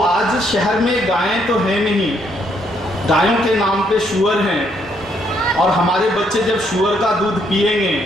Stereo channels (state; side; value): normal; both; correlation 0.71